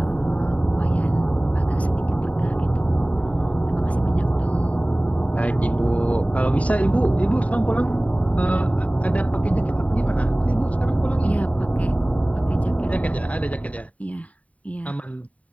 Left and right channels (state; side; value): late; right; 0.068 ms